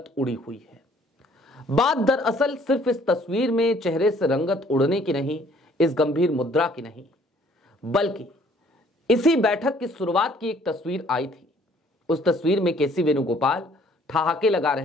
उड़ी हुई है। बात दरअसल सिर्फ इस तस्वीर में चेहरे से रंगत उड़ने की नहीं, इस गंभीर मुद्रा की नहीं, बल्कि इसी बैठक की शुरुआत की एक तस्वीर आई थी। उस तस्वीर में केसी वेणुगोपाल ठहाके लगा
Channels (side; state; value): both; normal; correlation 0.60